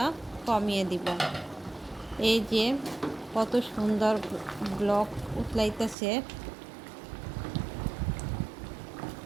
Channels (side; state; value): left; drops out; at 6.0 s